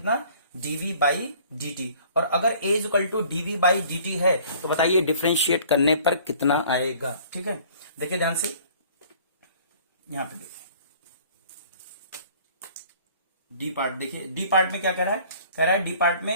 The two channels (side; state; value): both; inverted; correlation -0.53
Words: dv बाई dt, और अगर a equal to dv by dt है तो बताइए डिफरेंशिएट करने पर कितना आएगा। ठीक है, देखिए ध्यान से, यहां पे देखिए डी पार्ट, देखिए डी पार्ट में क्या कह रहा है डी पार्ट